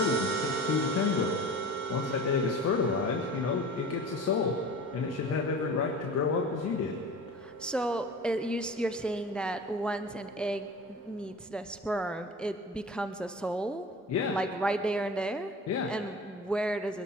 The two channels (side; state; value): both; normal; correlation 0.37